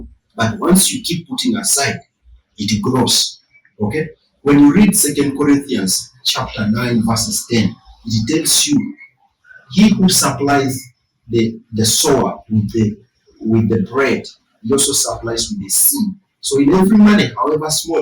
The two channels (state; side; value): identical; both; correlation 1.00